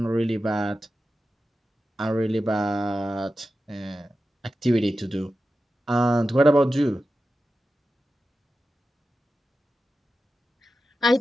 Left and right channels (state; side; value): normal; both; correlation 0.92